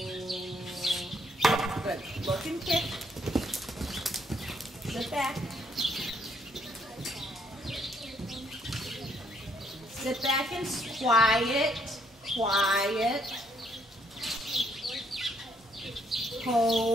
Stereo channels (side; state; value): both; normal; correlation 0.70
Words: Good. Look and kick. Sit back. Sit back and quiet. Quiet.